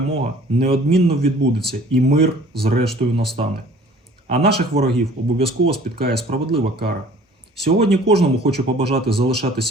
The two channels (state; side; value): normal; both; correlation 0.51